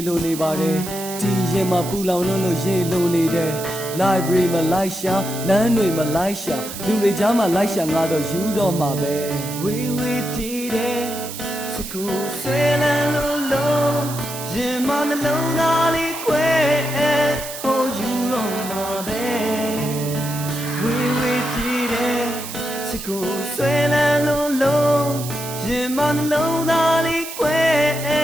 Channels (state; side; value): noise; right; hiss, 10 dB below the sound